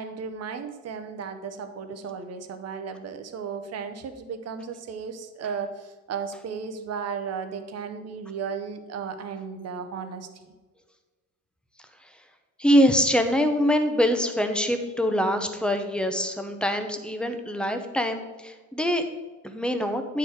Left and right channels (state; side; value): normal; both; correlation 0.59